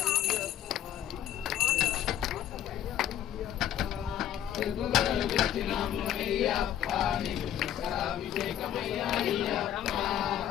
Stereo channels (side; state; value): right; quieter; 10.9 dB